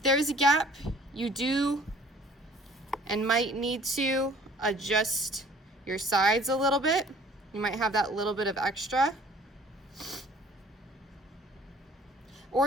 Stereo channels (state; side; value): normal; both; correlation 0.53